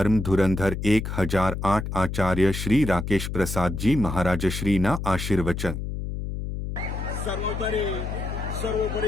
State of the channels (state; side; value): noise; left; hum, 5 dB below the sound